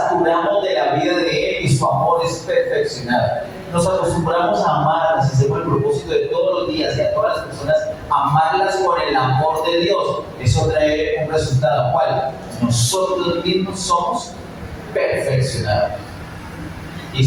de la vida de Él y su amor es perfeccionado. Nos acostumbramos a amarlas, hacemos el propósito de todos los días y a todas las personas, amarlas con el amor de Dios. Eso trae un resultado. ¿Cuál? Nosotros mismos somos perfeccionados. Y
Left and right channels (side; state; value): both; identical; correlation 1.00